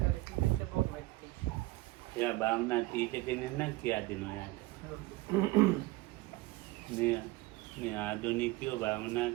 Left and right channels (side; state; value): left; quieter; 19.7 dB